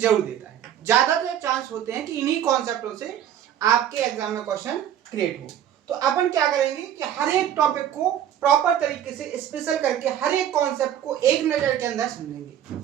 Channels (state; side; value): quieter; left; 10.4 dB